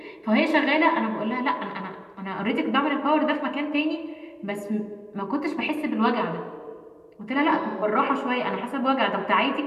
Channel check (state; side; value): identical; both; correlation 1.00